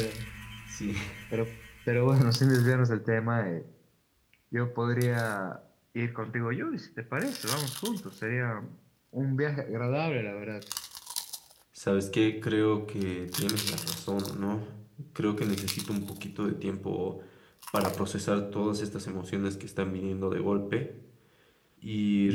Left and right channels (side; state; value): both; identical; correlation 1.00